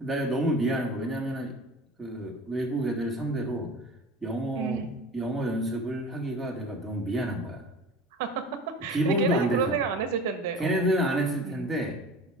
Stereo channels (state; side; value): normal; both; correlation 0.38